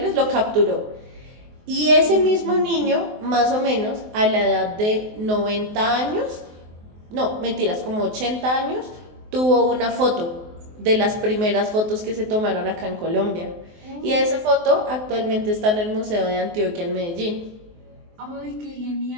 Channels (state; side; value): late; left; 23 ms